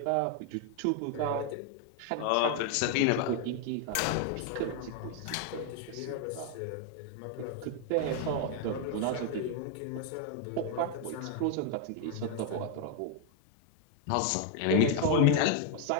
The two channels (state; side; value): different; both; correlation 0.00